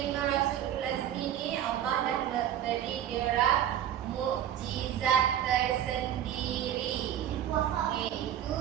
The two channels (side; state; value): left; quieter; 10.9 dB